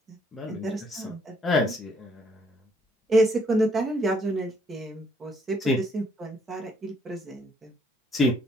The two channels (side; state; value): both; normal; correlation 0.68